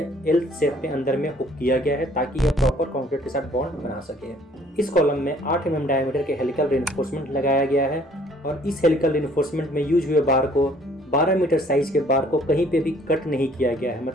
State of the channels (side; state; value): both; normal; correlation 0.58